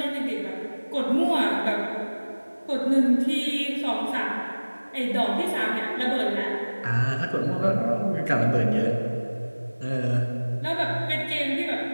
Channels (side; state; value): both; inverted; correlation -1.00